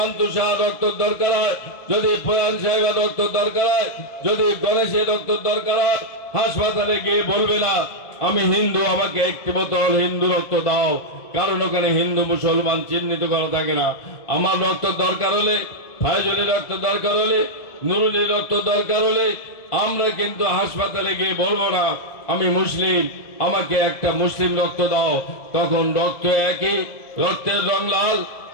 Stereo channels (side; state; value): right; late; 2.0 ms